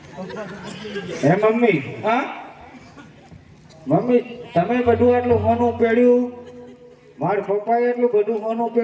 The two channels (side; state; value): both; identical; correlation 1.00